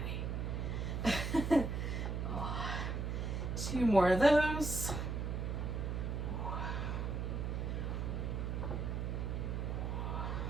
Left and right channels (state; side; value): noise; right; hum, 1 dB below the sound